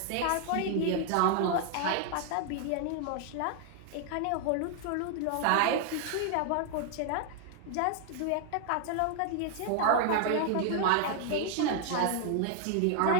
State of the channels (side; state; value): both; different; correlation 0.00